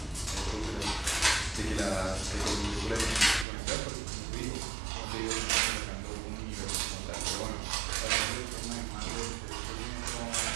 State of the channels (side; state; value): left; drops out; at 3.5 s